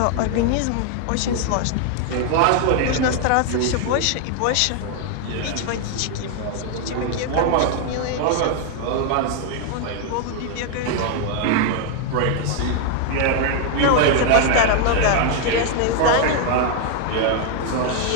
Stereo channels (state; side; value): different; both; correlation 0.00